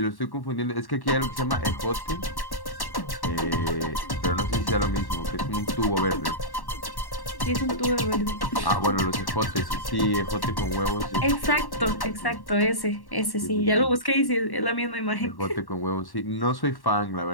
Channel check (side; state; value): right; late; 1.1 ms